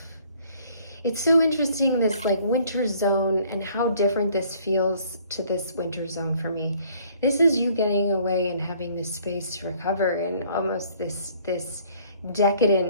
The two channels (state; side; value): inverted; both; correlation -0.59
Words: It's so interesting, this like winter zone, and how different this feels to this winter zone for me. This is you getting away and having this space to recover in almost this